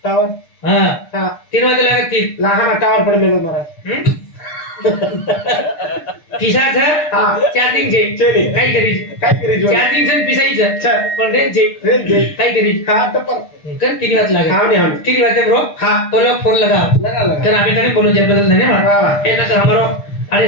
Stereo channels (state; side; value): late; right; 6.4 ms